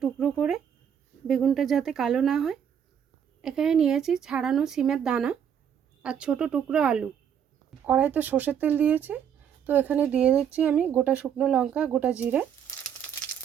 টুকরো করে, বেগুনটা যাতে কালো না হয়। এখানে নিয়েছি ছাড়ানো সিমের দানা আর ছোট টুকরো আলু। কড়াইতে সর্ষের তেল দিয়েছি, তো এখানে দিয়ে দিচ্ছি আমি গোটা শুকনো লঙ্কা, গোটা জিরে,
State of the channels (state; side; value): quieter; left; 8.4 dB